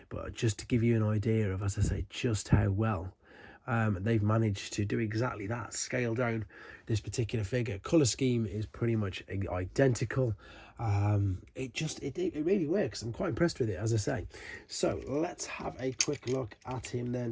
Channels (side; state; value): both; identical; correlation 1.00